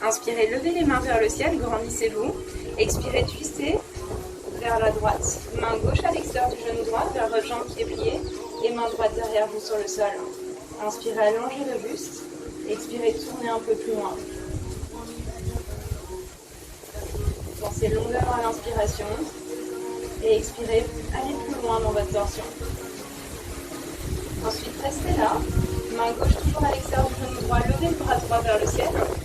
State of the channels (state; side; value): identical; both; correlation 1.00